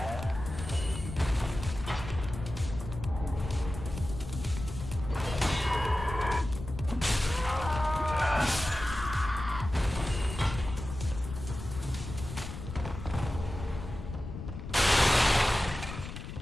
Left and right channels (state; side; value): noise; left; rumble, 9 dB below the sound